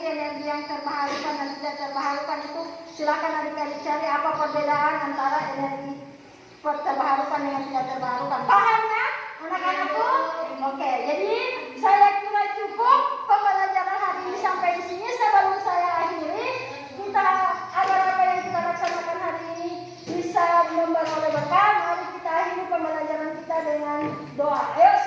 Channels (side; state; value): both; identical; correlation 1.00